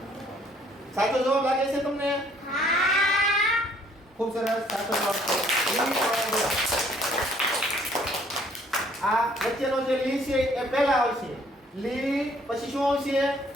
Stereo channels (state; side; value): normal; both; correlation 0.61